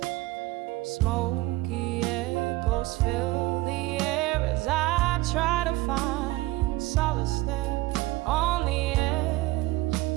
Smoky echoes fill the air as I try to find solace there on the edge,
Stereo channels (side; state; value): left; quieter; 19.6 dB